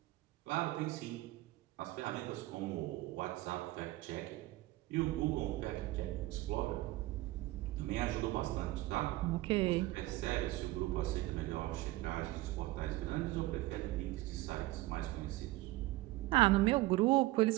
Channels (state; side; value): quieter; left; 18.4 dB